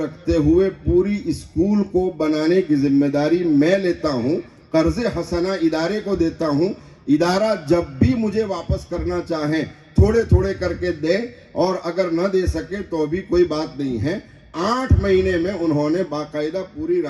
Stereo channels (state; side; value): identical; both; correlation 1.00